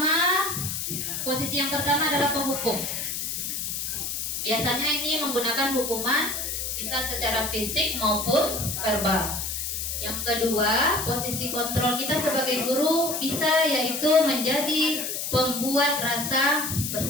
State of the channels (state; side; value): noise; left; hiss, 3 dB below the sound